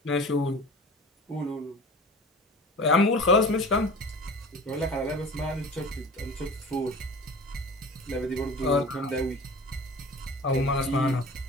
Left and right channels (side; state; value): both; normal; correlation 0.39